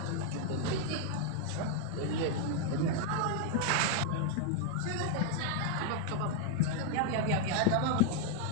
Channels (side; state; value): both; different; correlation 0.00